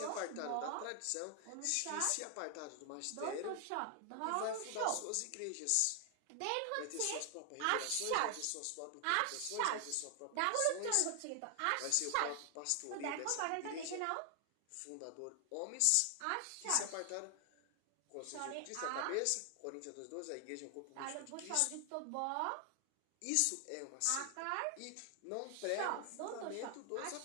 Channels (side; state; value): both; different; correlation 0.00